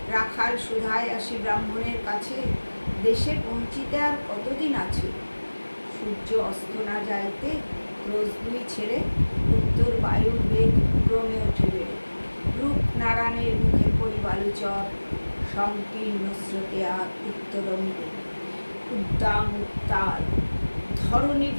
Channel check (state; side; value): inverted; both; correlation -1.00